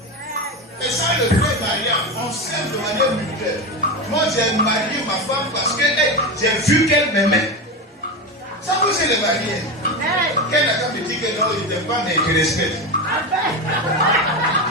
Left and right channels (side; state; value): both; normal; correlation 0.19